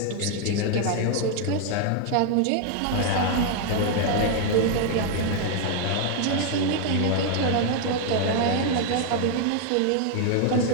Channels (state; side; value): different; both; correlation 0.00